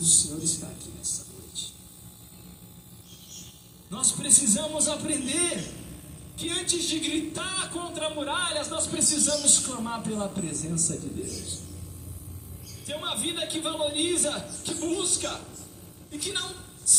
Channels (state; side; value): identical; both; correlation 1.00